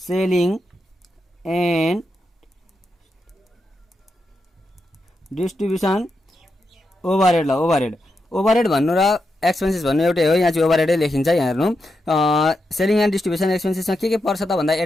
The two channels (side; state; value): both; normal; correlation 0.86